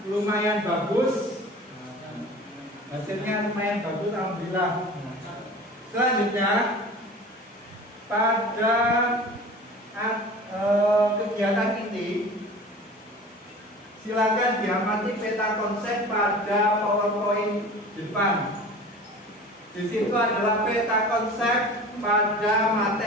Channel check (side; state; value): both; normal; correlation 0.39